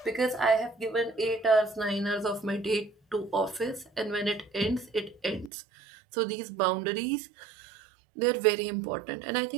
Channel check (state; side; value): drops out; left; at 5.5 s